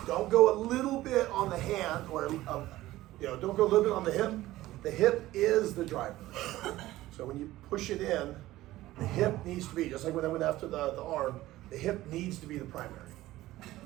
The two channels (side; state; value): left; quieter; 16.3 dB